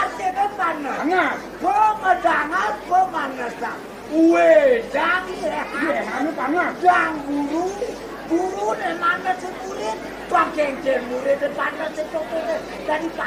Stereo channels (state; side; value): identical; both; correlation 1.00